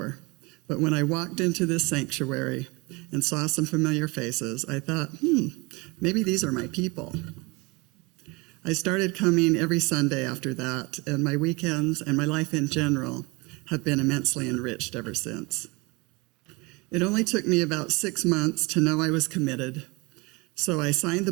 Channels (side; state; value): left; quieter; 26.1 dB